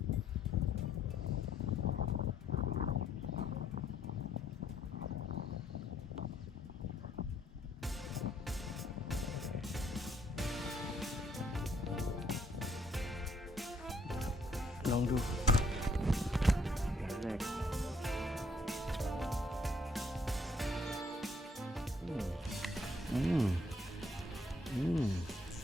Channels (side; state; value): both; normal; correlation 0.67